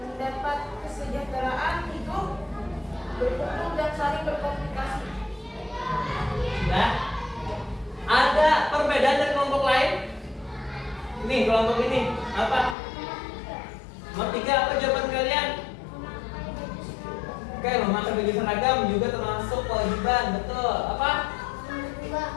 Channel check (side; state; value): right; drops out; at 12.8 s